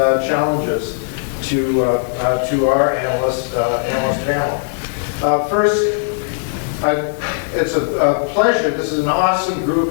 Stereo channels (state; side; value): silent; right; 64 dB below the other